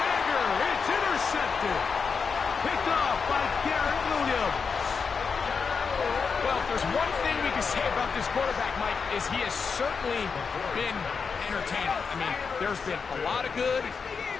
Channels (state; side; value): quieter; right; 5.5 dB